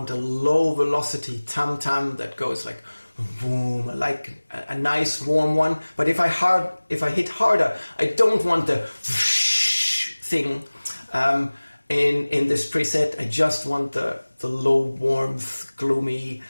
a low velocity tam-tam that goes like boom, like a nice warm one. But if I hit harder, I don't want the thing in this preset. I just want the low warmth, gloomy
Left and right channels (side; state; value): both; inverted; correlation -1.00